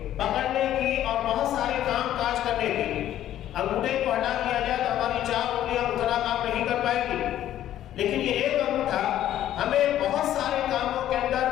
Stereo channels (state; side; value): quieter; right; 12.1 dB